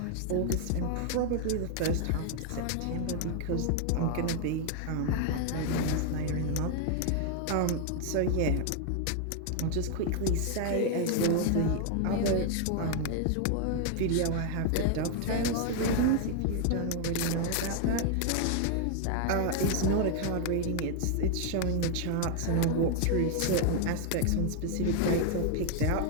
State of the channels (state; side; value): different; both; correlation 0.00